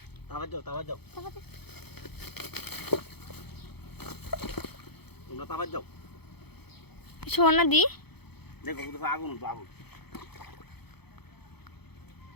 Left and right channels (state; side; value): late; right; 0.98 ms